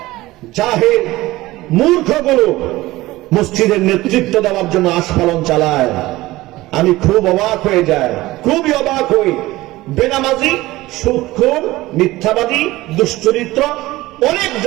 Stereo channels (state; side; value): quieter; left; 18.2 dB